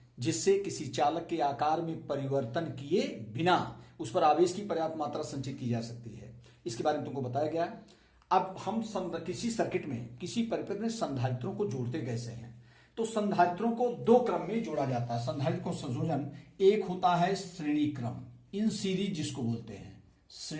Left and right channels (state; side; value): identical; both; correlation 1.00